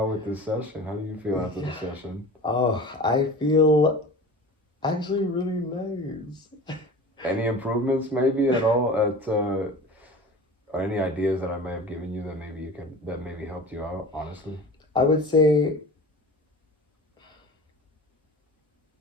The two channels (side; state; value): both; normal; correlation 0.37